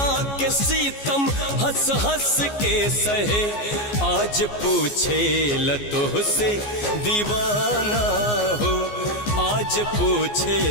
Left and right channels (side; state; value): right; late; 14 ms